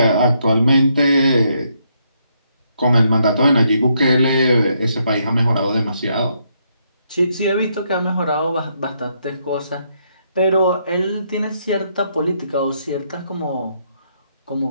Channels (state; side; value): inverted; both; correlation -0.75